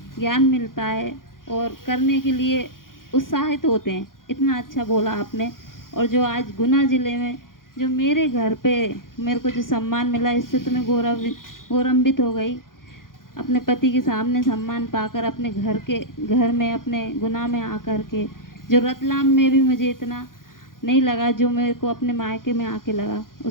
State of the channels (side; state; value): right; late; 0.90 ms